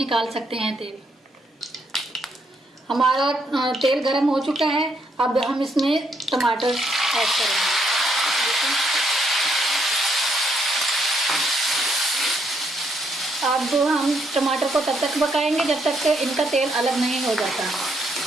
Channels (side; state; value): both; normal; correlation 0.74